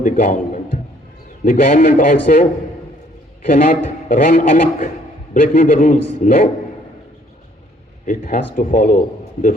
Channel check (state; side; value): normal; both; correlation 0.62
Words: the government. The government also cannot run amok, breaking the rules. No. It has to follow the